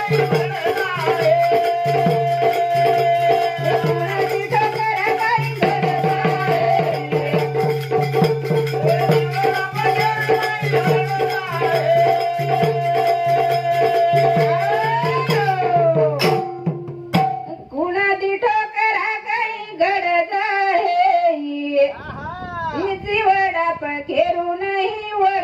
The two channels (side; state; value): both; identical; correlation 1.00